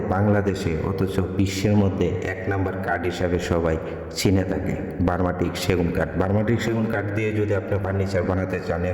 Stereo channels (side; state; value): both; identical; correlation 1.00